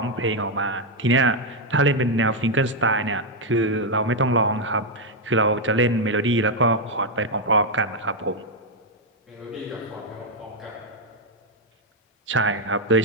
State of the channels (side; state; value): both; normal; correlation 0.01